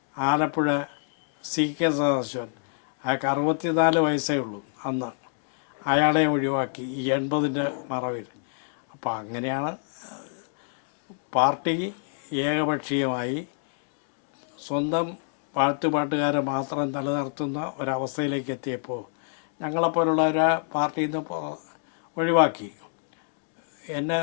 ആലപ്പുഴ CK സദാശിവൻ, അയാൾക്ക് 64 വയസ്സേ ഉള്ളൂ അന്ന്. അയാളെയും ഒഴിവാക്കി ഈ 80ൻ്റെ മറവിൽ. അപ്പോൾ അങ്ങനെയാണ് പാർട്ടി ഏകപക്ഷീയമായി സ്വന്തം പാട്ടുകാരെ മാത്രം നിലനിർത്തുന്ന ഒരവസ്ഥയിലേക്ക് എത്തിയപ്പോൾ ഞങ്ങളെപ്പോലുള്ളവരെ പാർട്ടിയിൽ നിന്ന് ഒഴിവാക്കി. എന്നെ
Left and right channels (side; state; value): right; silent; digital silence